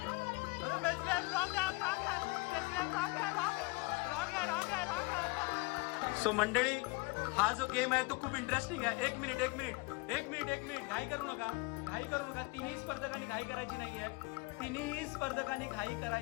अरे मेस्त्री साहेब रॉंग. सो मंडळी हा जो गेम आहे तो खूप इंटरेस्टिंग आहे. एक मिनिट घाई करू नका. तिन्ही स्पर्धकांनी घाई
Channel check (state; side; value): quieter; right; 25.9 dB